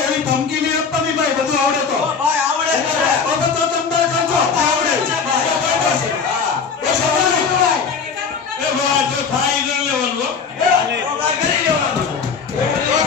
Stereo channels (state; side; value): quieter; right; 5.7 dB